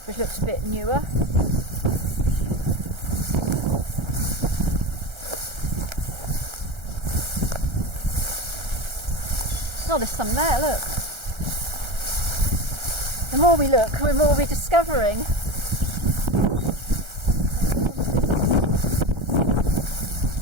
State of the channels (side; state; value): left; late; 1.3 ms